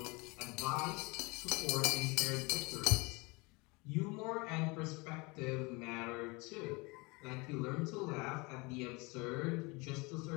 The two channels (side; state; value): right; quieter; 26.7 dB